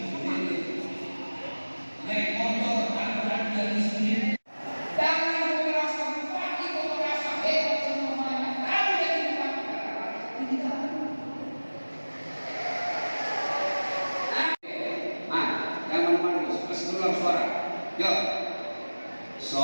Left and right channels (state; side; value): inverted; both; correlation -1.00